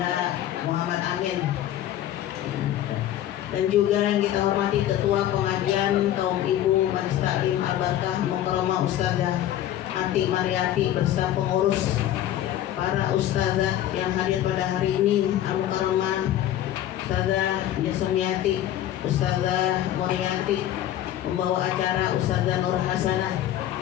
Muhammad Amin, dan juga yang kita hormati Ketua Pengajian Kaum Ibu Majelis Taklim Al-Barkah Mukarramah Ustazah Ati Mariati beserta pengurus, para ustazah yang hadir pada hari ini, Al-Mukarramah Ustazah Jasmiati, Ustazah Muriati, membawa acara Ustazah Nur Hasanah,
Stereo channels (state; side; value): quieter; right; 12.3 dB